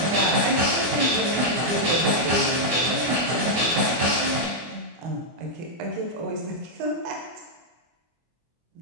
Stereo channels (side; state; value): left; late; 24 ms